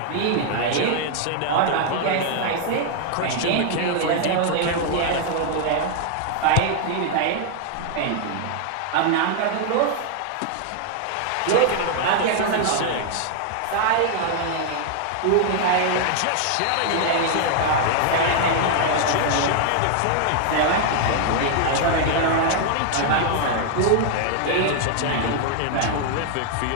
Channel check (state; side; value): different; both; correlation 0.00